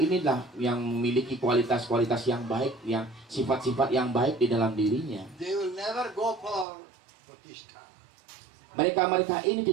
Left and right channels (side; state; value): left; drops out; at 6.7 s